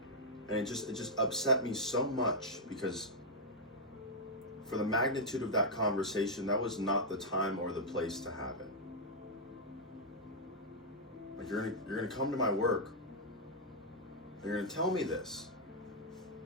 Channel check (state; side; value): normal; both; correlation -0.04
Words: And it just upset me so much because for the magnitude of that conversation, that was not the time or the place to have it. Like you're gonna come to my work and you're gonna tell me this